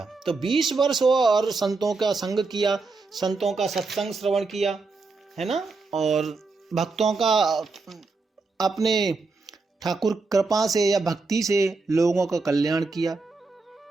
तो 20 वर्ष और संतों का संग किया, संतों का सत्संग श्रवण किया, है ना? और भक्तों का अपने ठाकुर कृपा से या भक्ति से लोगों का कल्याण किया।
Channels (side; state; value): left; quieter; 3.9 dB